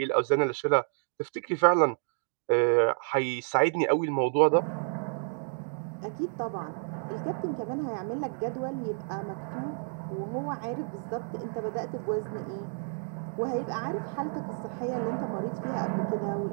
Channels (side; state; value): left; silent; 56 dB below the other